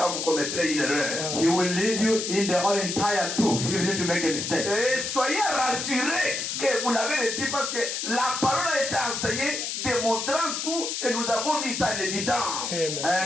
vous commettrez une erreur. He will lead you in the whole entire truth, even if you make a mistake. Et soyez rassurés que vous l'avez reçu parce que la parole a été enseignée, démontrant tout, et nous avons mis ça en évidence.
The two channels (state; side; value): noise; left; hiss, 3 dB below the sound